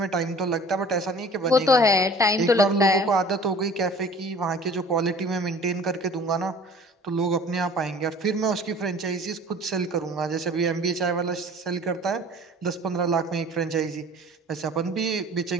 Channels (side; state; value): both; normal; correlation 0.47